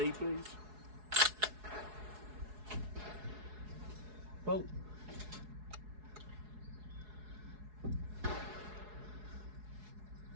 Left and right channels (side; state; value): left; late; 4.7 ms